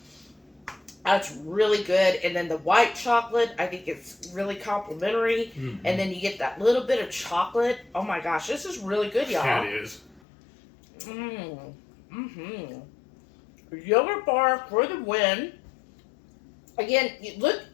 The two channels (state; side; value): drops out; right; at 10.2 s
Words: That's really good. And then the white chocolate, I think it's really complimentary. Mm-hmm. And then you get that little bit of chocolate. Oh my gosh, this is really good, y'all. Yeah, it is. Yogurt bar for the win. Again,